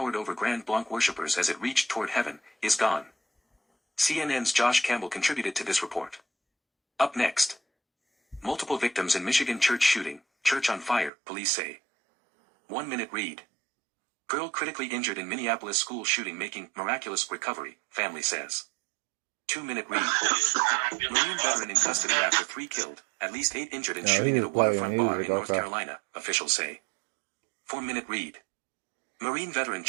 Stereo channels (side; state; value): left; drops out; at 11.1 s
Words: over Grand Blanc worshippers as it reached toward heaven, is gone. CNN's Josh Campbell contributed to this report. Up next. Multiple victims in Michigan church shooting, church on fire, police say. 1 minute read. Girl critically injured in Minneapolis school shooting making miraculous recovery, family says. 2 minute read. Marine veteran in custody after 3 killed, at least 8 injured in shooting at a waterfront bar in North Carolina, officials say. 4 minute read. Marine veteran